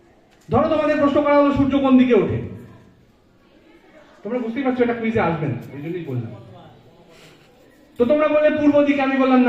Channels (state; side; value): identical; both; correlation 1.00